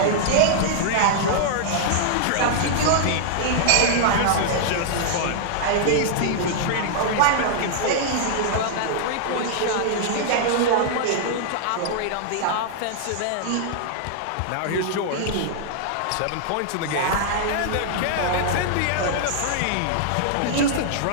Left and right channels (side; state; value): both; different; correlation -0.01